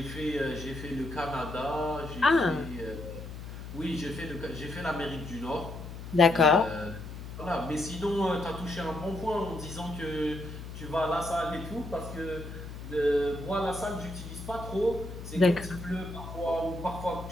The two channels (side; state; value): left; noise; hum, 10 dB below the sound